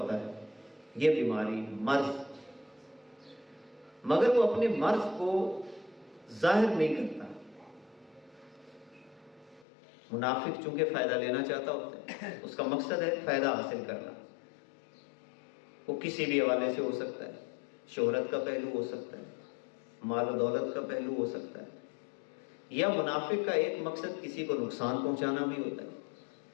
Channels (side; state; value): right; drops out; at 9.7 s